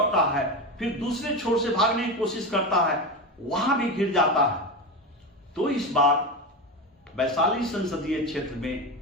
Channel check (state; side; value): normal; both; correlation 0.20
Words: है, फिर दूसरे छोर से भागने की कोशिश करता है, वहां भी घिर जाता है। तो इस बार वैशाली संसदीय क्षेत्र